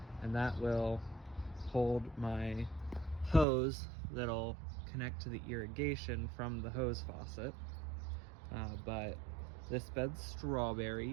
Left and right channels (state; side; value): drops out; left; at 3.5 s